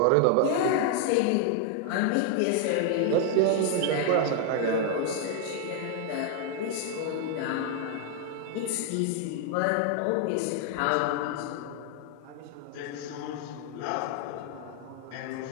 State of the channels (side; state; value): both; different; correlation 0.00